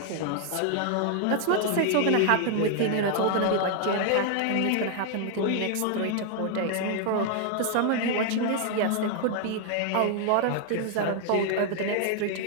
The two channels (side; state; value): both; different; correlation 0.00